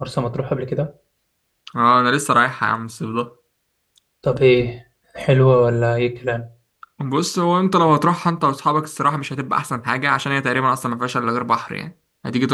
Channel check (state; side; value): identical; both; correlation 1.00